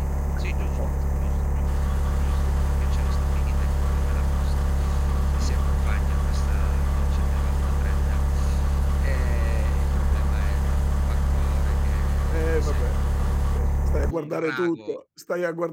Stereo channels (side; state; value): both; identical; correlation 1.00